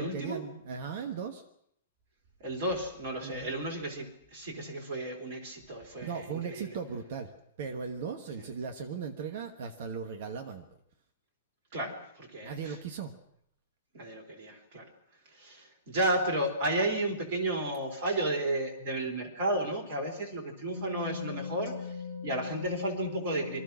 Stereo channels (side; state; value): both; inverted; correlation -0.43